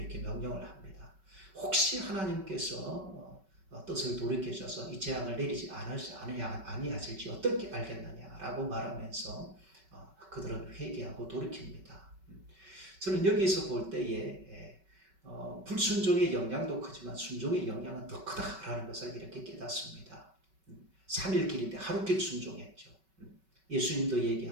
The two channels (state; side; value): late; left; 5.3 ms